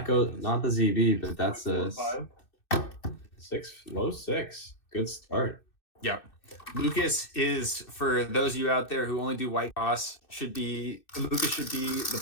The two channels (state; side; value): late; right; 2.6 ms